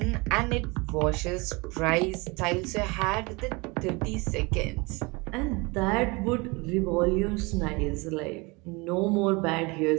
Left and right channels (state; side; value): quieter; left; 26.6 dB